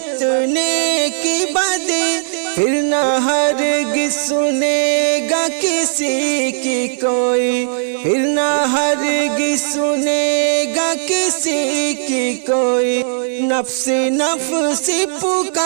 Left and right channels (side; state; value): left; silent; digital silence